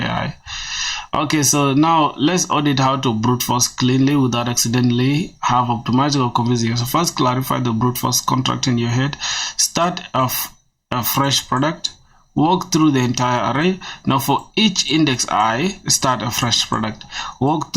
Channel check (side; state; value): both; identical; correlation 1.00